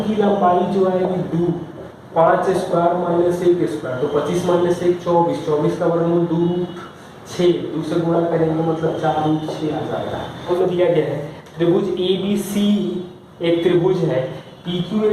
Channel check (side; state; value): both; identical; correlation 1.00